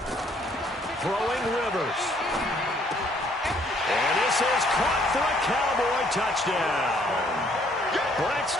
Throwing Rivers. And this is caught for a Cowboy touchdown.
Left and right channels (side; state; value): both; normal; correlation 0.64